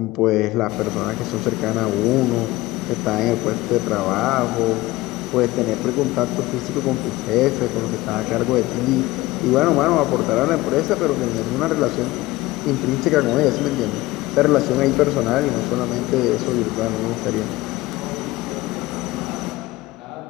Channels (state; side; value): quieter; right; 18.8 dB